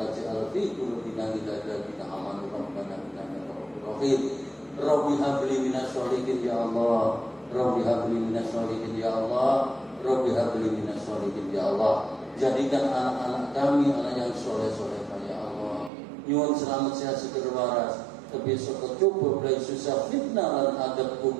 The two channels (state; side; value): drops out; left; at 15.9 s